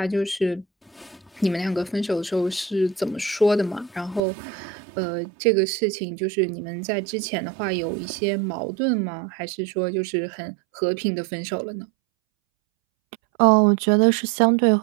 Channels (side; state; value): left; drops out; at 4.2 s